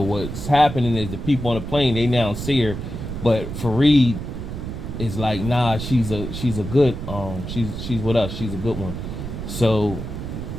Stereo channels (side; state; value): right; noise; rumble, 7 dB below the sound